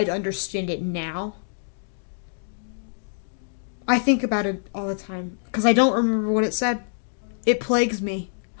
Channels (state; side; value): silent; right; digital silence